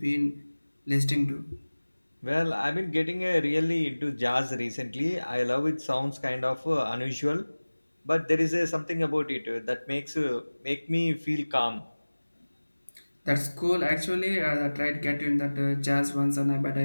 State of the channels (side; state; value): both; inverted; correlation -1.00